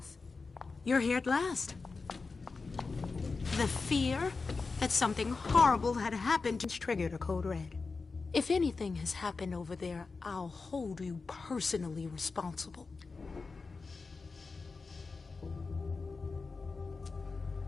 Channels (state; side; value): quieter; right; 4.3 dB